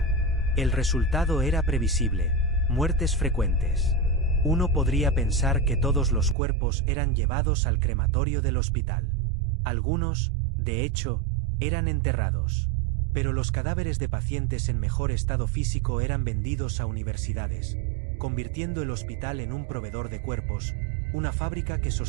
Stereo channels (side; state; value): left; drops out; at 6.4 s